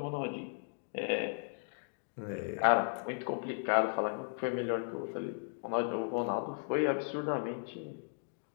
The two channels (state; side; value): silent; right; digital silence